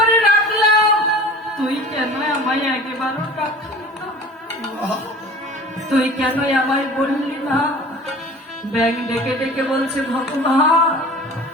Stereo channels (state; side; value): normal; both; correlation 0.41